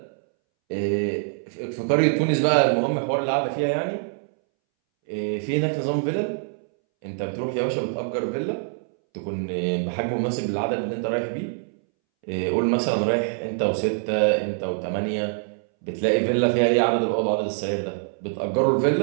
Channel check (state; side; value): silent; left; 62 dB below the other